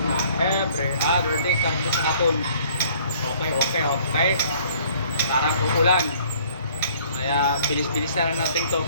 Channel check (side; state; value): both; inverted; correlation -0.57